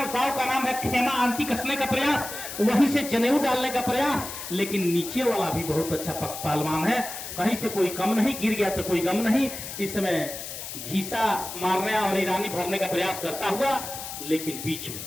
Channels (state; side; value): noise; left; hiss, 9 dB below the sound